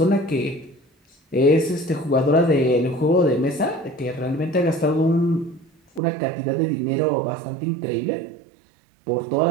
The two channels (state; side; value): drops out; left; at 6.0 s